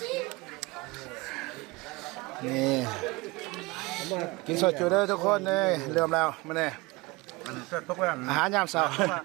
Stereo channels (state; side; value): quieter; left; 23.5 dB